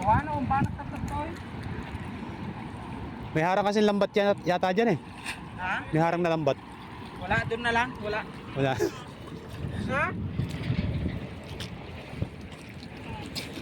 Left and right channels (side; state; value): both; identical; correlation 1.00